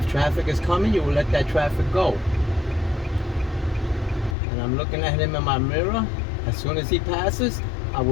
traffic is coming, you will let that traffic go. And I'm looking at him in my mirror. As soon as he passes, I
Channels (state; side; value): drops out; right; at 4.4 s